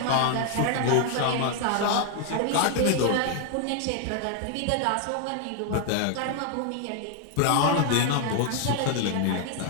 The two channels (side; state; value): both; different; correlation 0.00